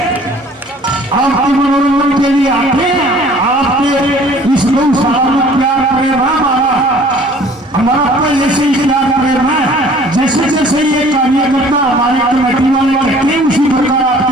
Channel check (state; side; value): normal; both; correlation 0.52